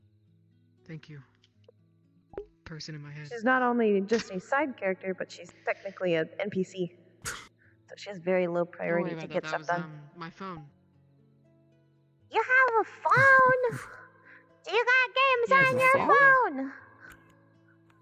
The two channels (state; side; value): identical; both; correlation 1.00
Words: Thank you. Person in my head. She's not only just a side character, but she's technically an NPC. So she has very low Don't worry priority about to that. get That stuff was done. my phone. You have a phone? Do you got games on your phone?